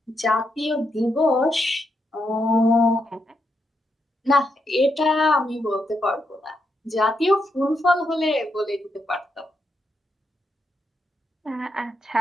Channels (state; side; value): normal; both; correlation 0.81